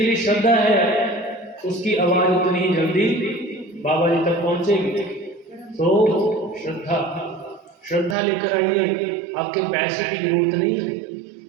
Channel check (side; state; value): left; drops out; at 8.2 s